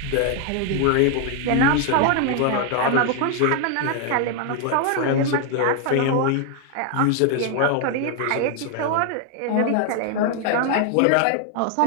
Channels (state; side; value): different; both; correlation 0.00